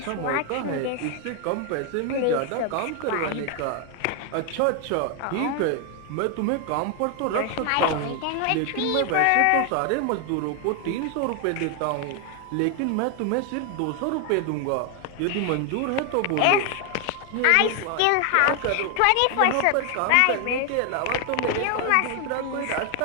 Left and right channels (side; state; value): both; different; correlation 0.00